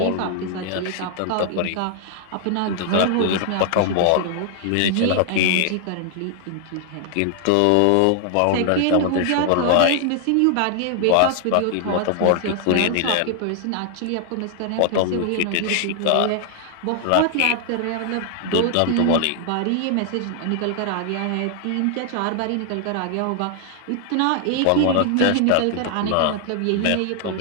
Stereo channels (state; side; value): different; both; correlation 0.00